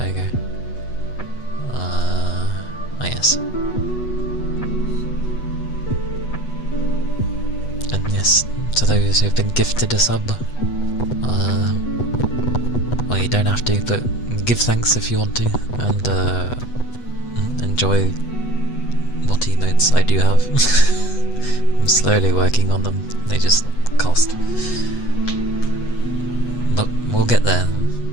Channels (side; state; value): right; late; 8.1 ms